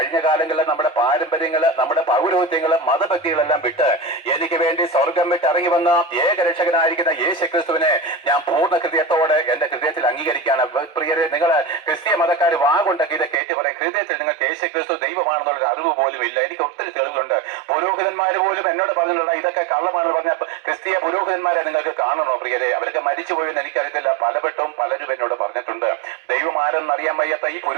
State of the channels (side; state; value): left; drops out; at 13.4 s